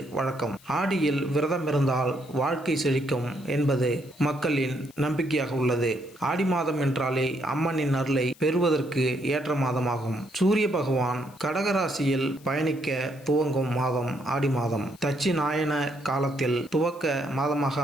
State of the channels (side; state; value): left; noise; hiss, 25 dB below the sound